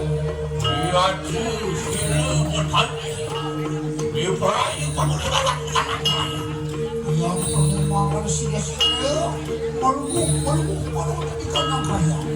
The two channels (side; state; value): both; identical; correlation 1.00